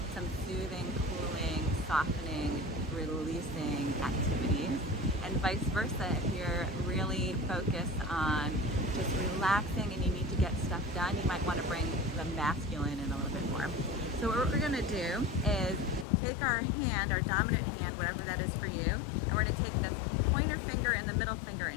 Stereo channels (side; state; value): right; drops out; at 16.1 s